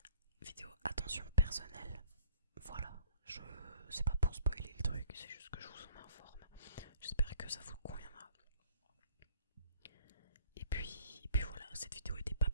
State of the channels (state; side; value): inverted; both; correlation -0.57